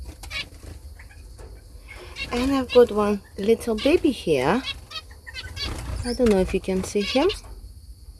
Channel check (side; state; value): both; identical; correlation 1.00